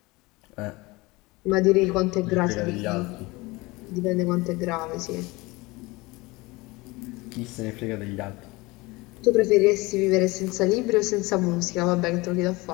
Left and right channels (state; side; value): quieter; right; 22.8 dB